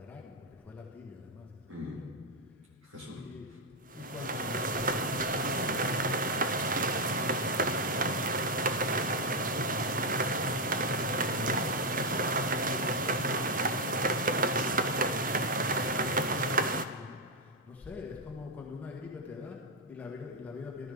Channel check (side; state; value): both; normal; correlation 0.01